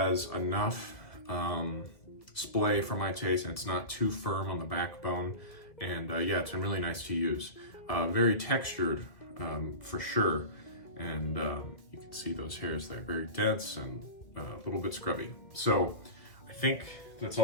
enough splay for my taste, and it's not too firm on the backbone. And yeah, it's been really nice to use. Very textured for sure. And you can see those hairs there, very dense and a little bit scrubby. So I think that's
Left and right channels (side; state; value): right; late; 2.2 ms